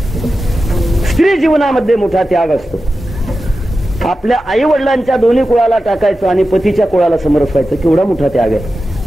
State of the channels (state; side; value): normal; both; correlation 0.93